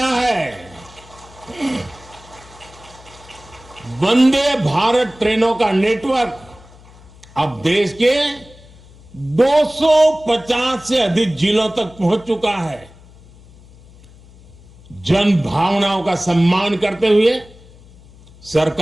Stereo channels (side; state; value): left; noise; hum, 23 dB below the sound